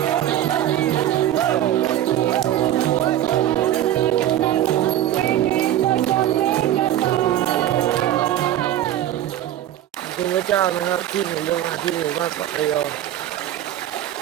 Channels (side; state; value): left; quieter; 12.3 dB